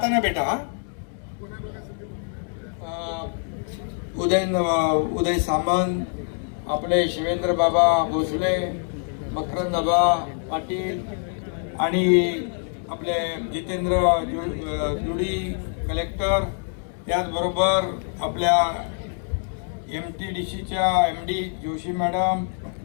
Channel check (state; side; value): silent; right; 55 dB below the other